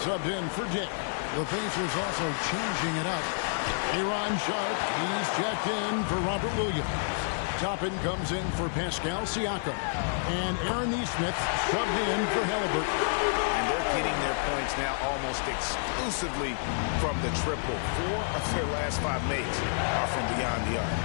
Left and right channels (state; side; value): silent; right; digital silence